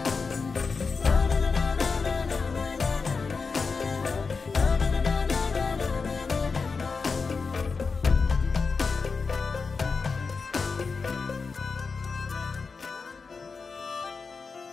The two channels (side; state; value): right; quieter; 4.8 dB